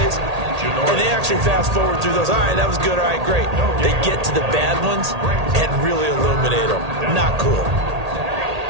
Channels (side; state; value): left; late; 1.8 ms